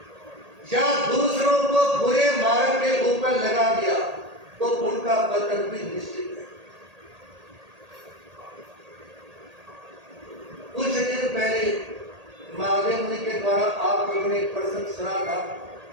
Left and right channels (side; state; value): left; late; 1.8 ms